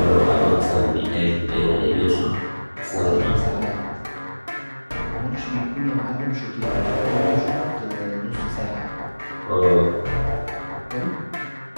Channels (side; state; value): both; inverted; correlation -1.00